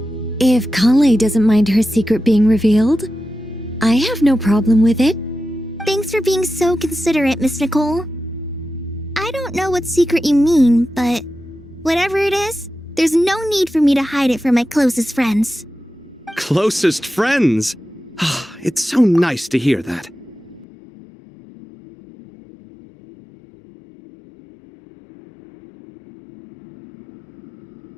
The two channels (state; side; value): drops out; right; at 20.7 s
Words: if Kale doesn't mind her secret being revealed, I have no problem with it. Thanks for being so considerate, Miss Nicole. I don't know what secret you mean, but whatever it is, there's no need for me to hide it from my closest friends. Closest friends? It's so nice to hear that.